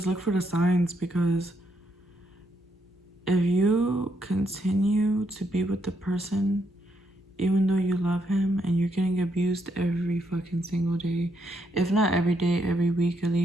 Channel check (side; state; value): both; normal; correlation 0.77